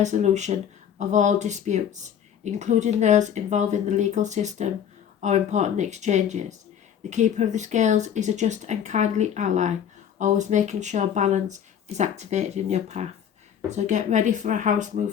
of all disputes, including those involving the legal system or important exchanges. The keeper of the scales is a just and kindly ally, always making sure balance is activated in your path. So get ready for a house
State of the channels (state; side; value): quieter; right; 8.8 dB